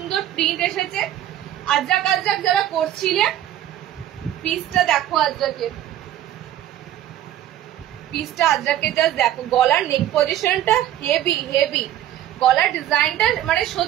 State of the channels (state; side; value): quieter; left; 12.2 dB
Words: প্রিন্ট এসেছে। আজরাক আজরাক যারা করছিলে, পিসটা দেখো আজরাকের, পিসটা আজরাকের জাস্ট দেখো। গলার নেক পজিশনটা হেভি হেভি, গলার ডিজাইনটা মানে